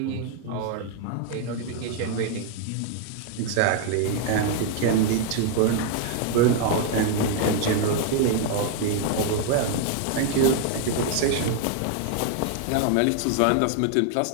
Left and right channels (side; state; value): both; different; correlation 0.00